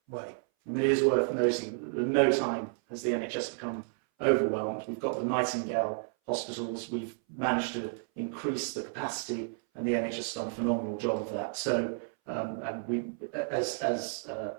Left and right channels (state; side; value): silent; left; 57 dB below the other